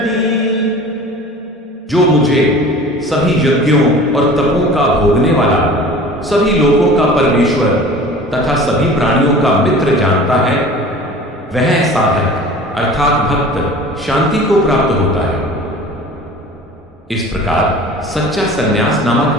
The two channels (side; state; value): both; normal; correlation 0.41